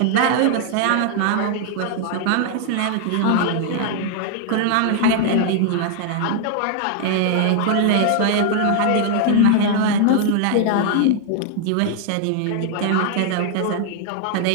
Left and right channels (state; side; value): different; both; correlation 0.00